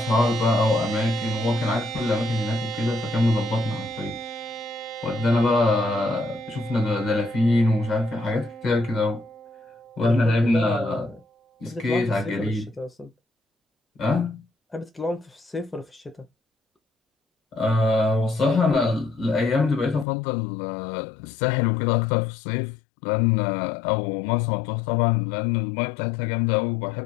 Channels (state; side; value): drops out; right; at 20.1 s